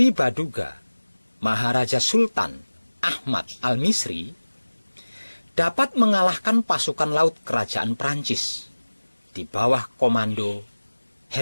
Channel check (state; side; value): inverted; both; correlation -1.00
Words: Baduga Maharaja Sultan Ahmad Al-Misri dapat mengalahkan pasukan laut kerajaan Prancis di bawah komando